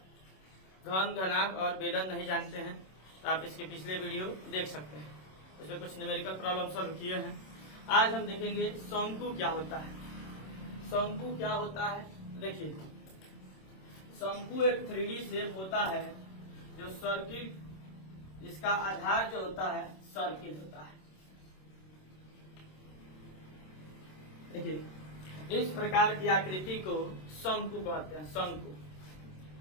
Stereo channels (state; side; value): late; right; 26 ms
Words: घन, घनाभ और बेलन नहीं जानते हैं तो आप इसके पिछले वीडियो देख सकते हैं, उसमें कुछ न्यूमेरिकल प्रॉब्लम सॉल्व किए हैं। आज हम देखेंगे शंकु क्या होता है। शंकु क्या होता है, देखिए शंकु एक 3D शेप होता है जो सर्किल, इसका आधार जो होता है सर्किल होता है। देखिए इस प्रकार की आकृति को शंकु कहते हैं, शंकु।